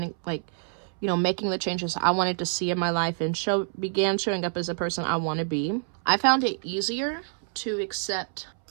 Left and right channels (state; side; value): silent; left; 60 dB below the other